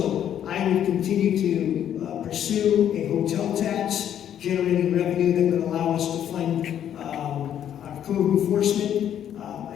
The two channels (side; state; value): right; quieter; 10.0 dB